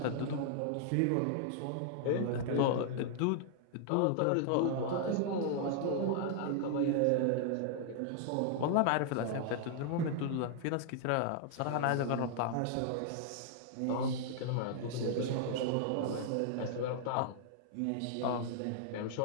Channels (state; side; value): different; both; correlation -0.01